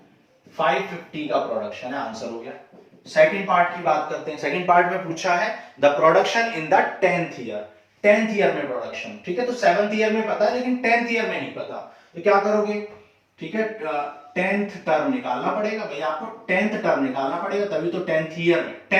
550 का प्रोडक्शन है, आंसर हो गया। सेकंड पार्ट की बात करते हैं। सेकंड पार्ट में पूछा है the production in the 10th year, 10th year में प्रोडक्शन, ठीक है। तो 7th ईयर में पता है लेकिन 10th ईयर में नहीं पता, तो क्या करोगे, ठीक है 10th टर्म निकालना पड़ेगा भाई, आपको 10th टर्म निकालना पड़ेगा, तभी तो 10th ईयर में,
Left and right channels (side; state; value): both; identical; correlation 1.00